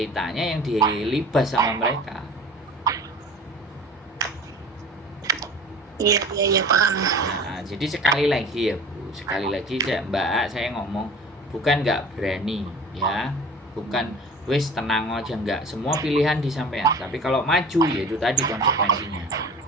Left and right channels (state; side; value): normal; both; correlation 0.41